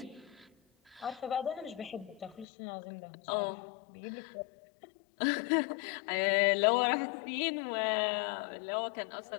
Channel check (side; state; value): right; drops out; at 2.5 s